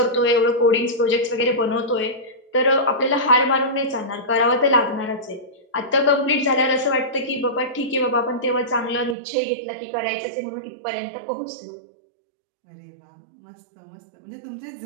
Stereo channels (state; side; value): drops out; left; at 9.2 s